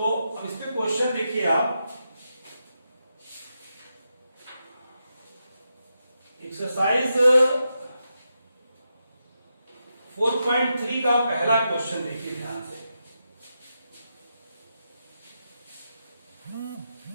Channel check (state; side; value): inverted; both; correlation -0.87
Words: अब इस पे क्वेश्चन देखिए आप, एक्सरसाइज 4.3 का पहला क्वेश्चन देखिए ध्यान से।